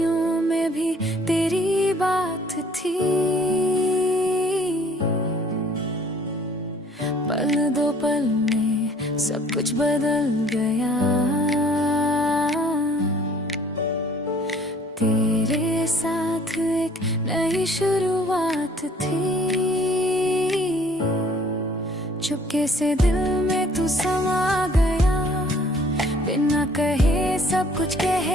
में भी तेरी बात थी, पल दो पल में सब कुछ बदल गया। तेरे साथ एक नई शुरुआत थी, चुपके से दिल में तू समा गया। बिना कहे सब कुछ कह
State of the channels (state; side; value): normal; both; correlation 0.57